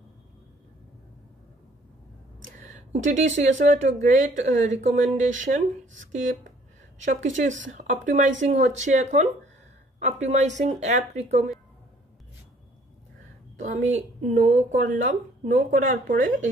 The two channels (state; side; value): normal; both; correlation 0.59